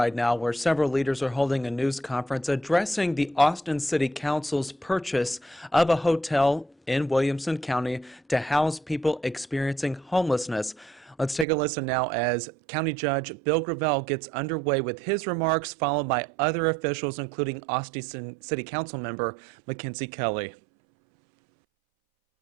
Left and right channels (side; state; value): left; drops out; at 11.5 s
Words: now, where several leaders are holding a news conference addressing the Austin City Council's purchase of a hotel in Williamson County to house people experiencing homelessness. Let's take a listen now as County Judge Bill Gravel gets underway with his remarks, followed by other officials, including Austin City Council member Mackenzie Kelly.